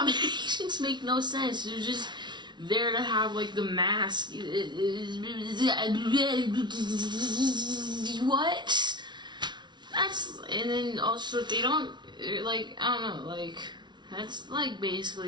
make no sense. They're just there to have, like, the mask. What? And then also they don't, like, I don't know, like, that's, like,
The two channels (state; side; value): late; left; 0.21 ms